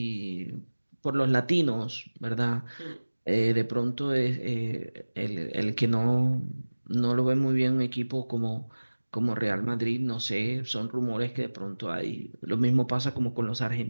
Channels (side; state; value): both; inverted; correlation -1.00